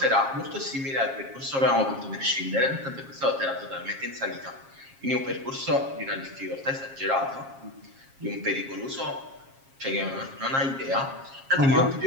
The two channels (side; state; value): left; late; 7.4 ms